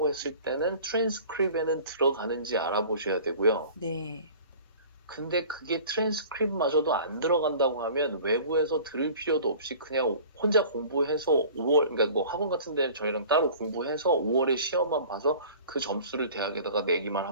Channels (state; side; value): inverted; both; correlation -0.44